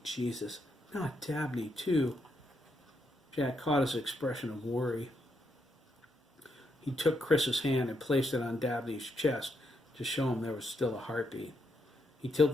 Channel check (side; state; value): both; normal; correlation 0.79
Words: Jesus, not Dabney, too." Jack caught his expression of worry. He took Chris's hand and placed it on Dabney's chest to show him there was still a heartbeat. He